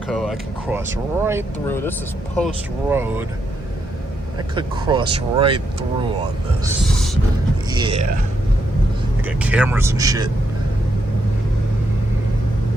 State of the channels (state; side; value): normal; both; correlation 0.80